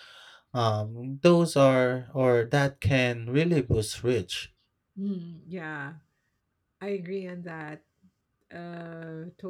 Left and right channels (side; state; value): both; identical; correlation 1.00